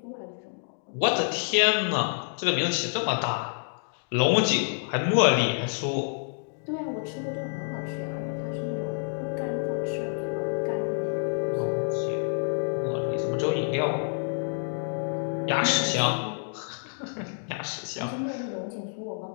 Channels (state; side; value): silent; right; digital silence